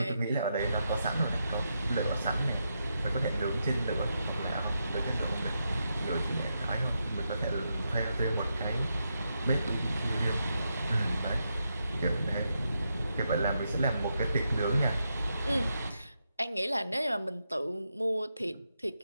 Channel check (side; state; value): both; inverted; correlation -0.84